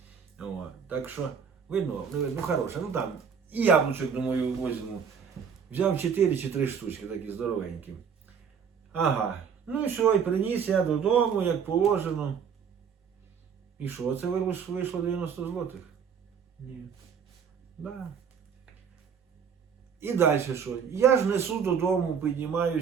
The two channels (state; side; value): quieter; left; 6.9 dB